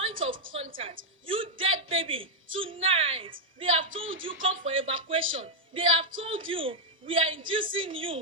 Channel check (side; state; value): both; normal; correlation -0.02